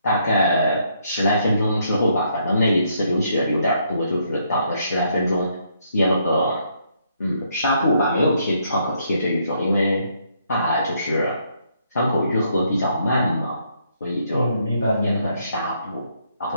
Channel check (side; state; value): both; inverted; correlation -0.72